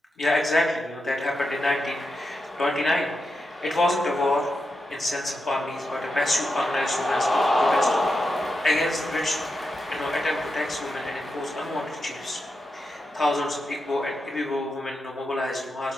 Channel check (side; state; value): both; normal; correlation 0.87